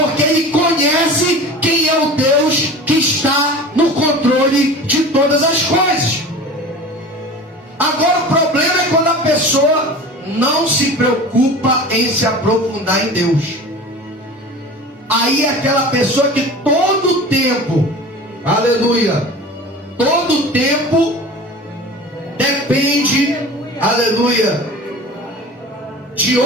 ele conhece quem é o Deus que está no controle de todas as coisas. Agora o problema é quando a pessoa não se preocupa em se aprofundar em Deus. Aí é aquela pessoa que todo tempo, aleluia, todo tempo depende, aleluia, de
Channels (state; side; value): normal; both; correlation 0.37